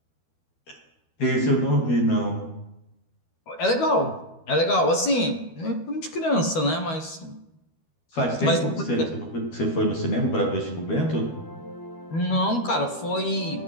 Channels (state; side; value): late; right; 12 ms